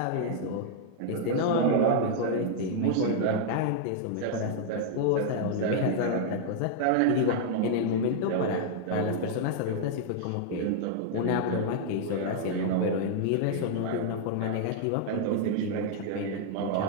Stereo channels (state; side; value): different; both; correlation -0.01